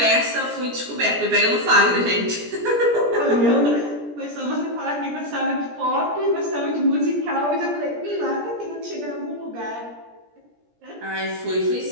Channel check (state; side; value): late; left; 17 ms